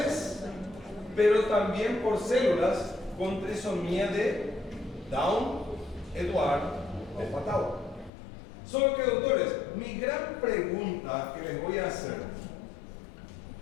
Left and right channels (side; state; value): right; drops out; at 8.1 s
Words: pero también por células con trisomía de Down, Eduardo, de Fatal. Solo que, doutores, mi gran pregunta que les voy a hacer: